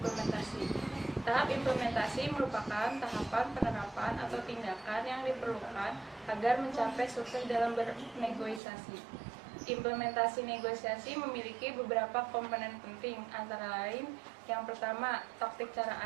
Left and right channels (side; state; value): left; drops out; at 8.6 s